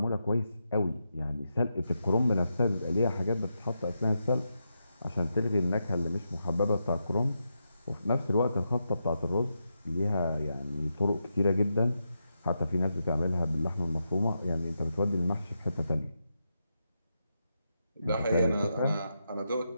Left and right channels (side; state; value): both; inverted; correlation -0.85